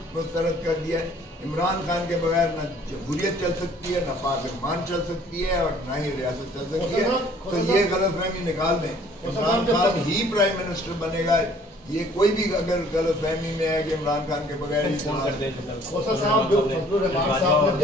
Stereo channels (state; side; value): normal; both; correlation 0.56